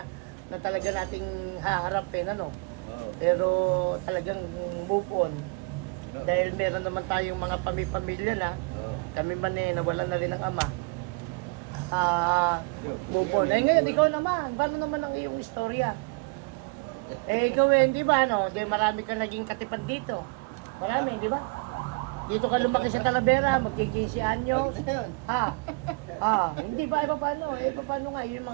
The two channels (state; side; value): quieter; left; 30.4 dB